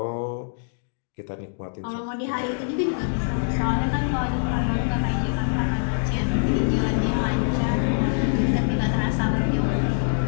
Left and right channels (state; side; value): silent; right; digital silence